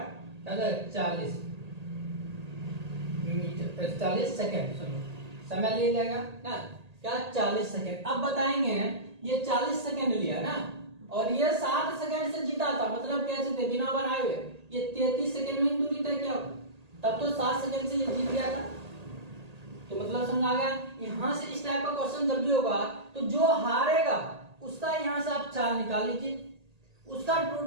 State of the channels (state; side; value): late; left; 1.8 ms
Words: क्या 40 मीटर 40 सेकेंड समय ले जाएगा ना क्या 40 सेकेंड। अब बताएंगे ये 40 सेकेंड लिया ना और ये 60 सेकेंड से जीता था, मतलब कैसे थे बिना बनाए हुए ये 33 सेकेंड में दूरी तय किया, तब तो 60 सेकेंड से ये जीत गया था। तो मतलब समझ आ गया। यहां से इस टाइप का क्वेश्चन जब भी होगा तो जो हारेगा उसका यहां से आप चाल निकाल लीजिए, उसका